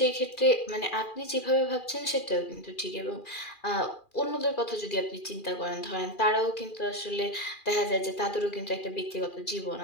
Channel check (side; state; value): right; late; 2.4 ms